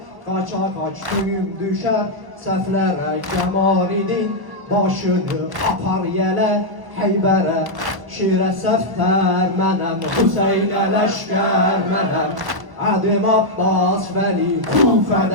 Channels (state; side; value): late; left; 1.1 ms